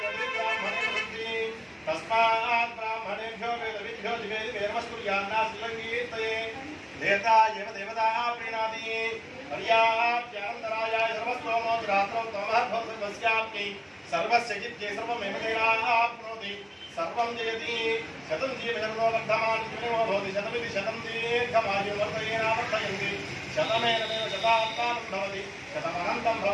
ब्राह्मणे भवन्ति तस्मात् ब्राह्मणेभ्यो वेदविभ्यो दिवे नमस्कुर्यान्नास्लङ्गीर्तये देवता एव देवता प्रीणाति पर्याप्त्यानन्तरायाय सर्वस्तोमो रात्रौ तमः भवति सर्वस्य जित्ये सर्वमेव तेनाप्नोति सर्वं जयति शतं जीवजन्मो वर्धमानं जीवनो भवति शतमिति शतं दीर्घमायुः वर्धयेनावर्धयन्ति शतमेनमेव शतात्मानं भवति शतमनन्तं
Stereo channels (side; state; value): both; identical; correlation 1.00